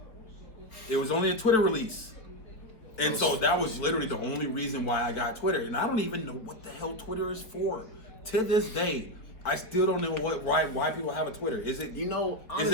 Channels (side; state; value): right; late; 4.2 ms